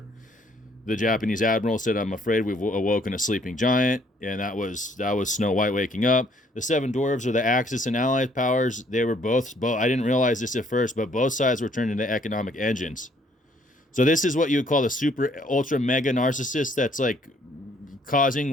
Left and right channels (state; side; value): normal; both; correlation 0.64